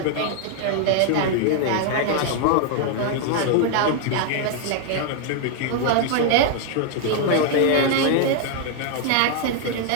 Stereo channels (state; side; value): different; both; correlation 0.00